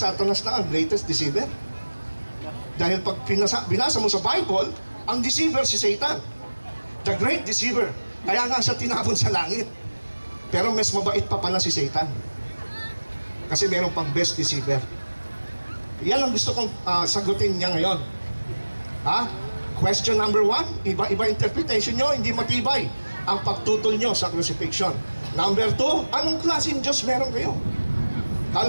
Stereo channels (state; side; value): inverted; both; correlation -1.00